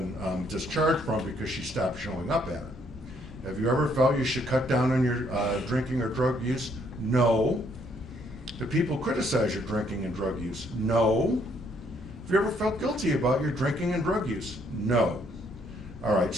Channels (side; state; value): both; normal; correlation 0.68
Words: discharged from because she stopped showing up at it. Have you ever felt you should cut down on your drinking or drug use? No. Do people criticize your drinking and drug use? No. Have you ever felt guilty about your drinking and drug use? No. All right,